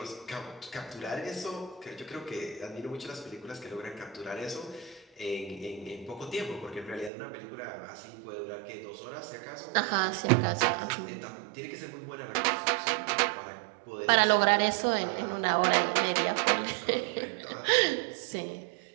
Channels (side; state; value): left; drops out; at 7.1 s